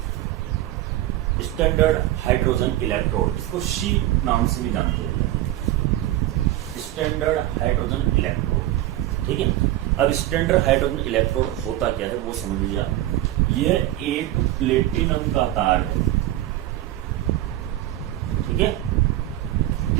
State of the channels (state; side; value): quieter; left; 14.5 dB